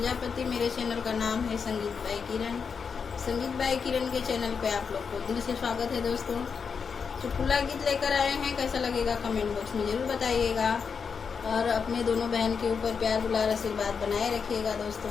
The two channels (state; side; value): quieter; right; 5.9 dB